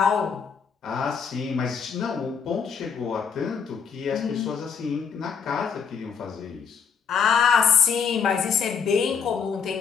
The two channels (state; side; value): quieter; right; 6.6 dB